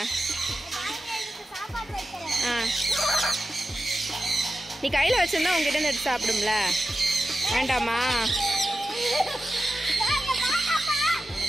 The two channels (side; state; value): both; normal; correlation 0.91